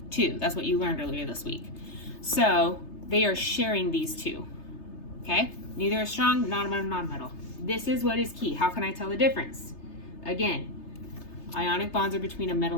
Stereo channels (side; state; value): right; late; 3.3 ms